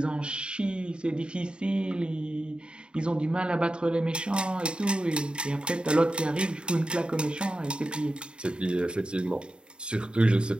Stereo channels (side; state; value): left; late; 0.051 ms